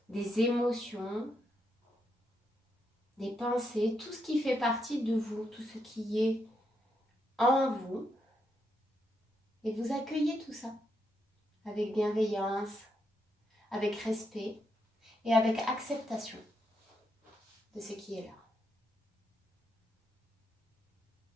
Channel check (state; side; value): normal; both; correlation 0.80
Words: des émotions, des pensées, tout ce qui fait partie de vous, tout ce qui est en vous. Et vous accueillez tout ça avec bienveillance, avec respect et avec acceptation de ce qui est là.